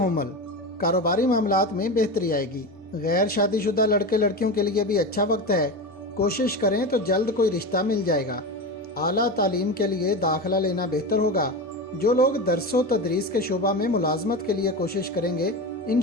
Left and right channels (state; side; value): normal; both; correlation 0.22